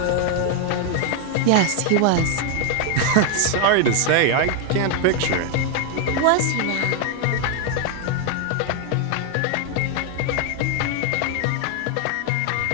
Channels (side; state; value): both; different; correlation 0.01